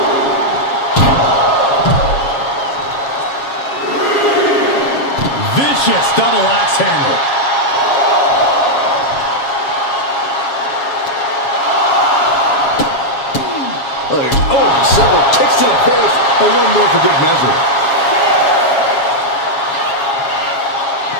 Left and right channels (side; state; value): right; late; 7.3 ms